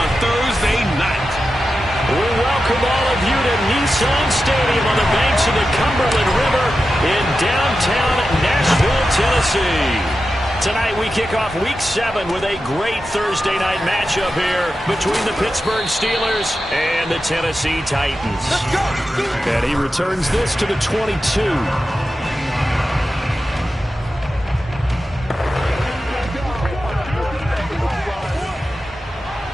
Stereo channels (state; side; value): normal; both; correlation 0.91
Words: Thursday night. We welcome all of you to Nissan Stadium on the banks of the Cumberland River in downtown Nashville, Tennessee. Tonight we kick off Week 7 with a great Thursday night matchup here between the Pittsburgh Steelers and the Tennessee Titans. Let's go! And he returns this to the 22.